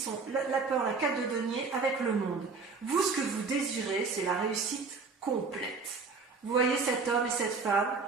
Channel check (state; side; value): quieter; left; 4.5 dB